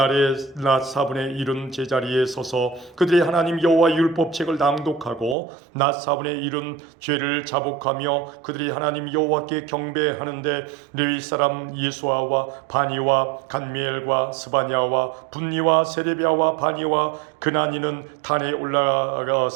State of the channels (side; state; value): left; drops out; at 5.4 s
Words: 낮 4분의 1은 제자리에 서서 그들의 하나님 여호와 율법책을 낭독하고 낮 4분의 1은 죄를 자복하며 그들이 하나님 여호와께 경배하는데 레위 사람 예수아와 바니와 간미엘과 스바냐와 분니와 세레비아와 바니와 그나니는 단에